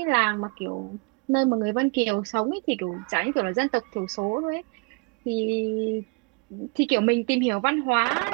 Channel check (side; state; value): left; quieter; 31.4 dB